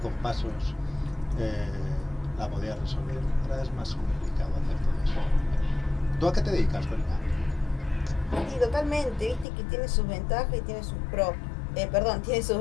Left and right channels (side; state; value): right; drops out; at 9.5 s